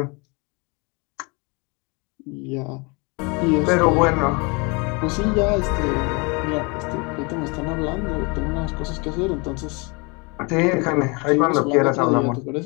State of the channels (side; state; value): right; quieter; 30.1 dB